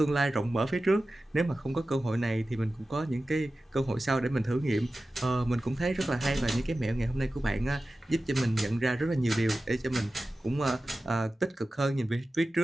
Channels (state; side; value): normal; both; correlation 0.95